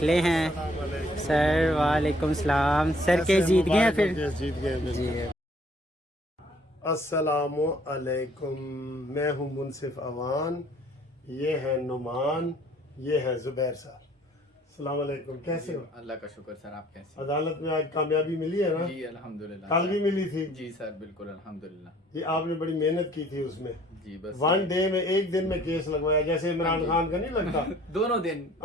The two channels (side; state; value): both; normal; correlation 0.59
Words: ہیں. سر وعلیکم السلام. سر کیس جیت گئے ہیں پھر؟ جی السلام علیکم. میں ہوں منصف اوان، یہ ہے نعمان، یہ ہے زبیر صاحب. السلام علیکم. کیسے ہو؟ اللہ کا شکر سر. آپ کیسے؟ عدالت میں آج کامیابی ملی ہے نا؟ جی الحمدللہ. کل بھی ملی تھی؟ جی سر بالکل الحمدللہ. یہ آپ نے بڑی محنت کی تھی اس میں. جی بس ون ڈے میں ایک دن میں کیس لگوایا، جیسے عمران خان کا نہیں لگتا. دونوں دن